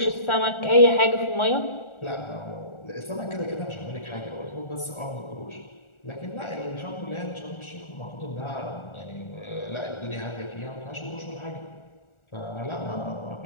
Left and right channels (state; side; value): late; right; 1.4 ms